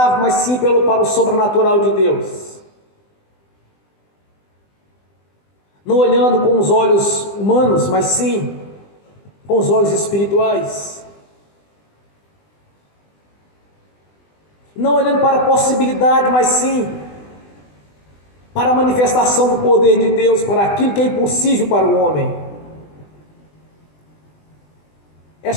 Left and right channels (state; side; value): late; right; 20 ms